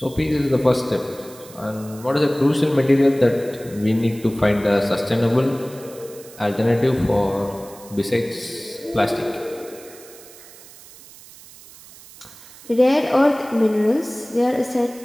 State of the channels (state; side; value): noise; right; hiss, 20 dB below the sound